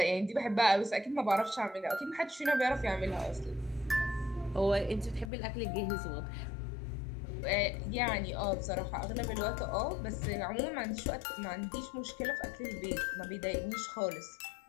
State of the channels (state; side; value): drops out; right; at 5.3 s